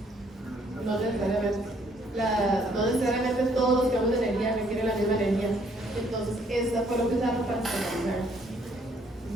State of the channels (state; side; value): normal; both; correlation 0.66